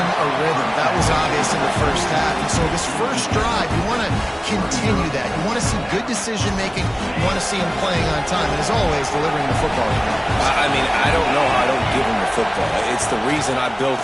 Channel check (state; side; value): identical; both; correlation 1.00